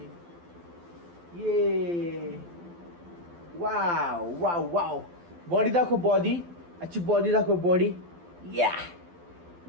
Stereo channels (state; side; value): late; left; 12 ms